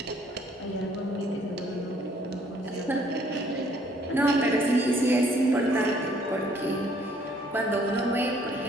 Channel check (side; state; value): both; normal; correlation 0.62